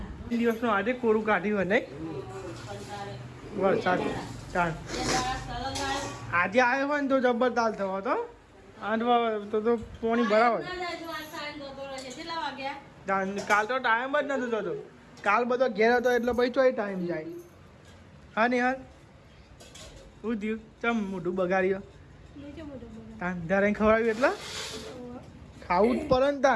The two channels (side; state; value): both; identical; correlation 1.00